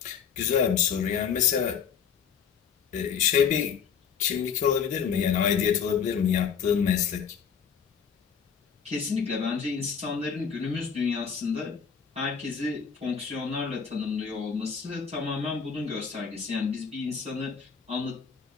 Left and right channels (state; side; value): quieter; right; 6.9 dB